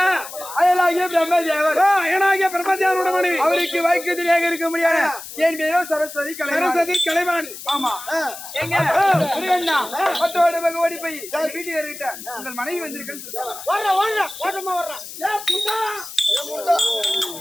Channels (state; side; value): noise; left; hiss, 12 dB below the sound